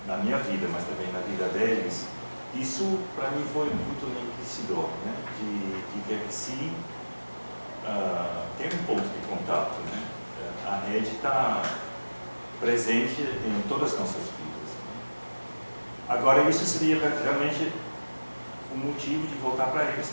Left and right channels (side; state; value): both; inverted; correlation -1.00